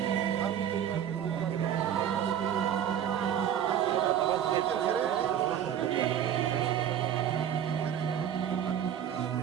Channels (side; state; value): left; quieter; 9.7 dB